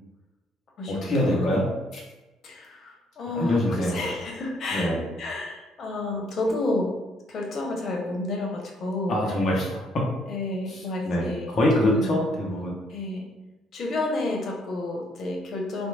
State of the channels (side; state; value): both; normal; correlation 0.68